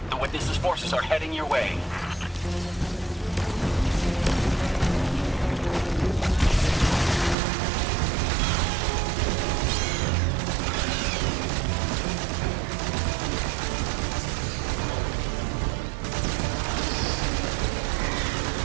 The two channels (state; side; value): drops out; left; at 7.4 s